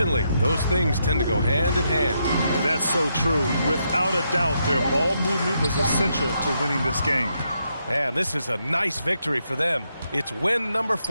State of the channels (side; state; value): both; inverted; correlation -0.80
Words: Those things tend to go hand in hand. And that's so true. Without a doubt, their ball movement was essential to winning this game. And this is a nice victory for them. It's win number